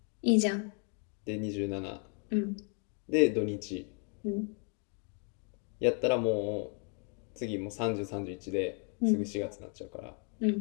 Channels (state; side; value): quieter; right; 39.9 dB